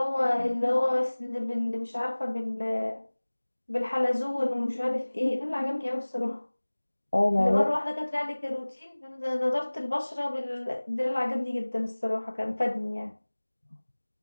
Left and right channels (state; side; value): inverted; both; correlation -1.00